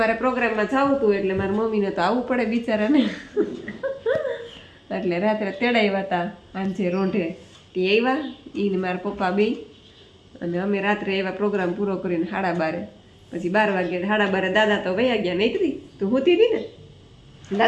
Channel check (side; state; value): both; identical; correlation 1.00